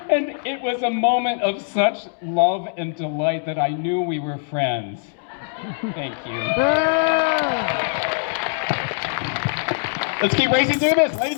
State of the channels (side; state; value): right; silent; 64 dB below the other